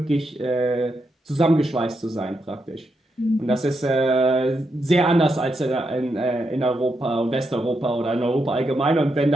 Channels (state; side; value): normal; both; correlation 0.83